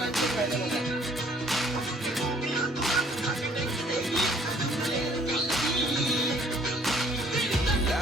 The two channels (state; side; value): normal; both; correlation 0.60